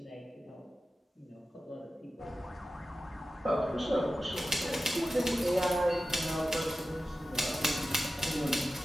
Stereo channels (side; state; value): both; normal; correlation 0.94